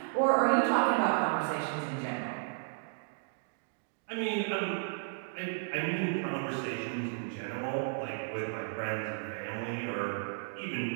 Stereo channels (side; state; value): left; silent; digital silence